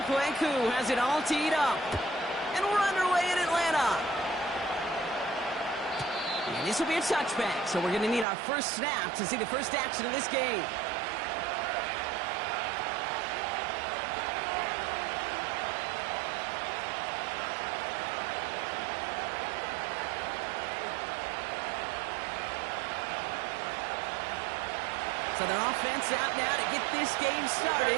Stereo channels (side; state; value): left; drops out; at 8.2 s